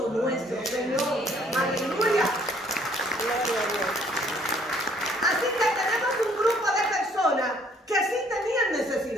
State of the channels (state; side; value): normal; both; correlation 0.62